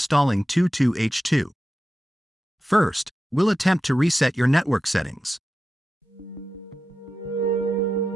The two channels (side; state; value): both; normal; correlation 0.92